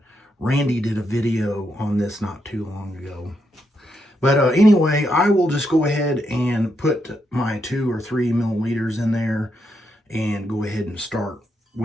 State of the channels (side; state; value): both; normal; correlation 0.81